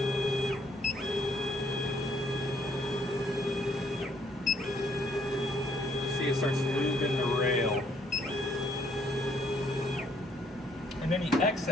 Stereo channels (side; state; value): both; normal; correlation 0.66